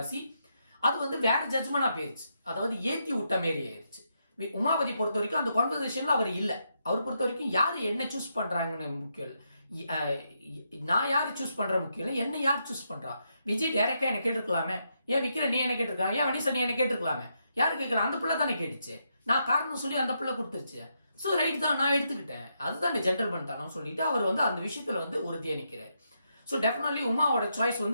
அது வந்து வேற ஜட்ஜ்மெண்டா போயிருச்சு, அதாவது ஏத்தி விட்ட மாரி ஆயிருச்சு. உமாபதி பொறுத்த வரைக்கும் அந்த கான்வர்சேஷன்ல அவர் இல்லை. அவர் பொறுத்த வரைக்கும் யாரு என்ன சூஸ் பண்றாங்கன்னு முக்கியம் இல்லை, நான் யாரு சூஸ் பண்ற முக்கியம் இல்லை, என்ன யார் சூஸ் பண்றா. விஜய் டைரக்டா என்ன கேட்டிருக்கலாமே, ஏன் விக்ரன் நீ என்ன கேட்டிருக்காங்க, ஏன் வனிசா நீ என்ன கேட்டிருக்கலாமே, யாரு கேட்கலாம், அந்த பிள்ளை தானே கேட்டுச்சு, நான் காரணம் சொல்லி அந்த பிள்ளை கொடுத்துருச்சு, ஸோ ரைட் தான் நான் எடுத்துக்கிட்டேன், அதுதான் ஜென்டல்மேன் தானு சொல்லிட்டு அவர் வந்து அந்த விஷயத்துல வந்து உறுதியா நிற்கிறார். ஸோ டெஃபினெட்லி உமாவோட சாய்ஸ்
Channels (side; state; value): both; inverted; correlation -0.80